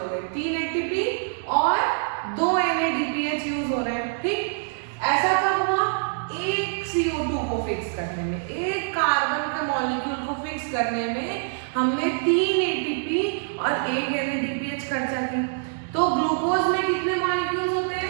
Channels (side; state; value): left; silent; digital silence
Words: CO2 को फिक्स करने में, एक कार्बन के मॉलिक्यूल को फिक्स करने में हमने 3 ATP और 1 NADPH खर्चा की। तो ग्लूकोज में कितने मॉलिक्यूल्स होते हैं?